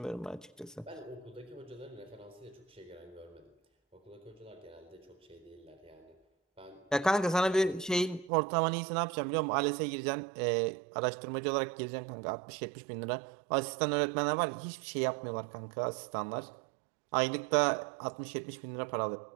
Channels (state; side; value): drops out; left; at 8.3 s